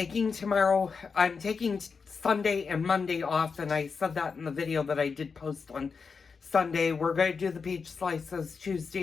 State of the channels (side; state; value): right; quieter; 5.3 dB